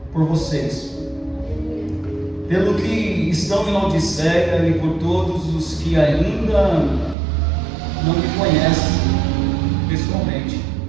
por vocês, pelo que estão em Laodiceia e por todos os que ainda não me conhecem pessoalmente.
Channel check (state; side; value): drops out; left; at 7.2 s